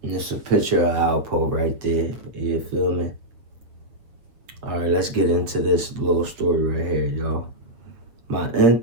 And it's a picture of Alpo right there. You feel me? All right, let's get into this little story right here, y'all. My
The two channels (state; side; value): late; left; 7.9 ms